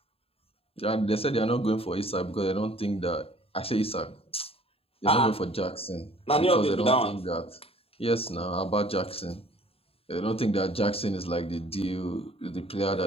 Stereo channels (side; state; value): right; late; 0.28 ms